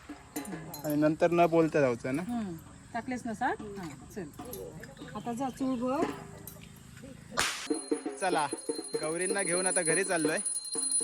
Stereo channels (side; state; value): both; identical; correlation 1.00